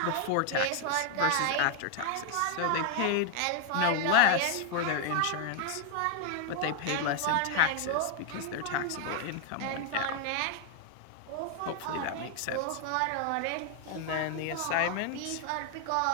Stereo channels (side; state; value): both; different; correlation 0.00